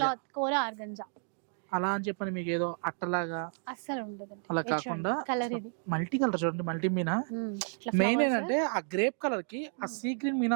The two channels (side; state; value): left; silent; 57 dB below the other